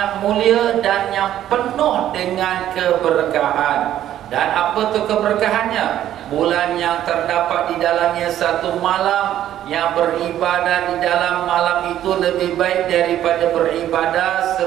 mulia dan yang penuh dengan keberkahan. Dan apa tu keberkahannya? Bulan yang terdapat di dalamnya satu malam yang beribadah di dalam malam itu lebih baik daripada beribadah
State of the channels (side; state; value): left; quieter; 11.9 dB